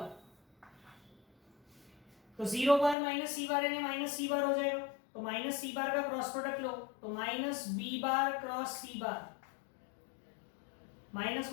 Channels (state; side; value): drops out; right; at 3.0 s